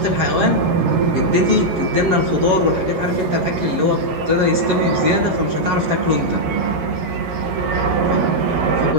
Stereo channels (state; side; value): late; left; 11 ms